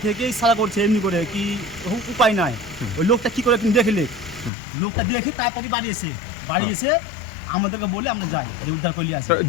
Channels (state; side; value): drops out; right; at 4.5 s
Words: থেকেই সারা করছে এমনি করে, কি উপায় নাই। ওই লোকটা কি করে দেখলে, লোকটা দেখে তাড়াতাড়ি বাড়ি এসে আমাদেরকে বলে আমরা যাই যে উদ্ধার করলি আসি।